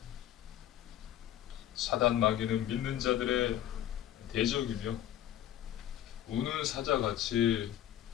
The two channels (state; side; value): quieter; right; 11.8 dB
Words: 사단 마귀는 믿는 자들의 대적이며 우는 사자같이